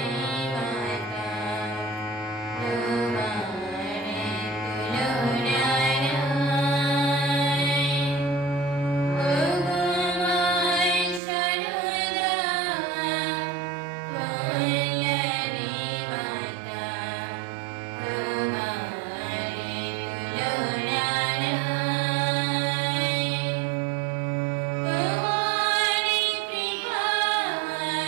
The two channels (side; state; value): left; drops out; at 11.2 s